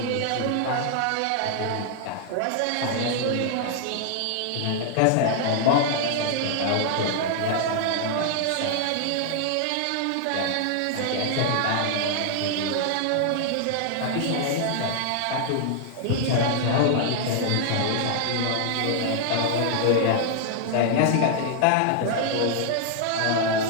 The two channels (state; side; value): different; both; correlation -0.01